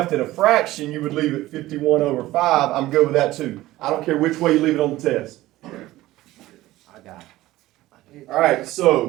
it a fraction, you would leave it 51 over 5. I'm good with that too. I don't care which way you leave it on the test. I got it. All right,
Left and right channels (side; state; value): left; quieter; 16.7 dB